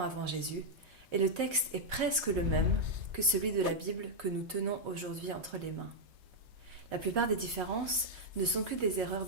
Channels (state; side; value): late; left; 3.3 ms